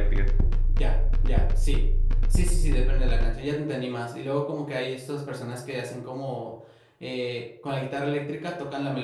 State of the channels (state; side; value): identical; both; correlation 1.00